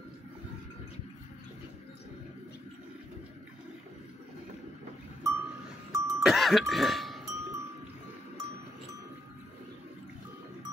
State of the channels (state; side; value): normal; both; correlation 0.78